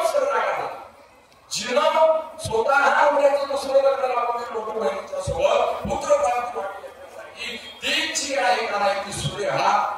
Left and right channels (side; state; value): both; identical; correlation 1.00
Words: रागाला जिनं स्वतः मुलाचं दुसरं लग्न लावून लोक बहिणीच्या सोबत पुत्र प्राप्त करण्यासाठी ती जी आहे का नाही ती सूर्य